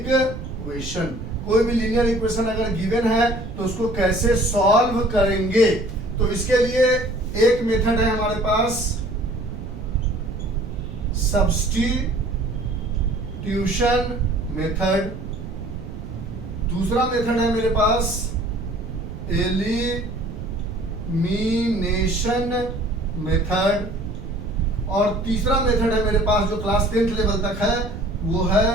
कोई भी लीनियर इक्वेशन अगर गिवन है तो उसको कैसे सॉल्व करेंगे। तो इसके लिए एक मेथड है हमारे पास, सब्स्टिट्यूशन मेथड। दूसरा मेथड है मेरे पास एलिमिनेशन मेथड, और तीसरा मेथड है मेरे पास जो क्लास 10th लेवल तक है, वो है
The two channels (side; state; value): right; noise; rumble, 10 dB below the sound